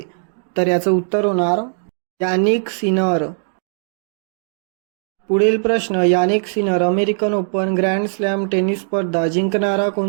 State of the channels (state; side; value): silent; left; 66 dB below the other